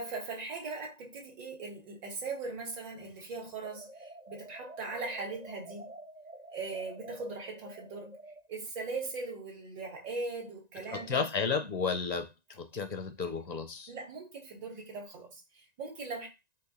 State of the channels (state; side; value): late; left; 1.9 ms